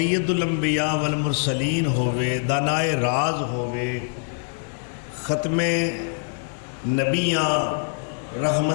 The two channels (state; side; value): silent; right; 63 dB below the other